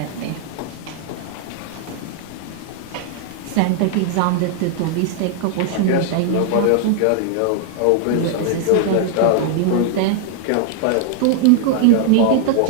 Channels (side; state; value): both; different; correlation 0.00